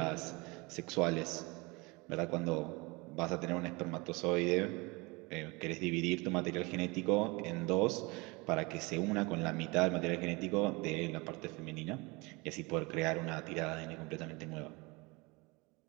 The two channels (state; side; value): quieter; left; 26.0 dB